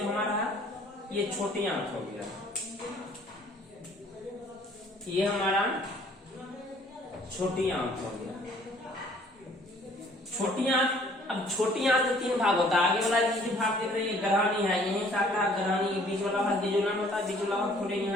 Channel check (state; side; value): normal; both; correlation 0.58